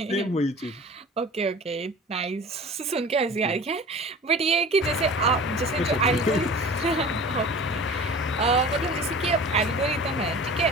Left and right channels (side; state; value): both; normal; correlation 0.39